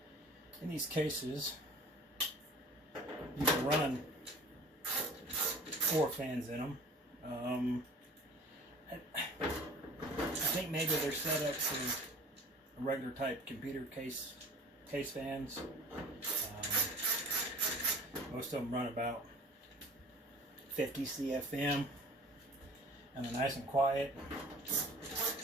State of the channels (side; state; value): both; normal; correlation 0.45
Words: In these cases, you can run 4 fans in them. I think maybe they're set up for regular type computer case fans. Most of them run about 50 CFM, and they're nice and quiet.